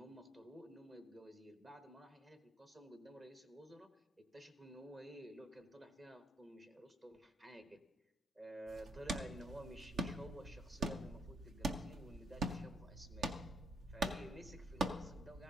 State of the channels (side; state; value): both; normal; correlation 0.72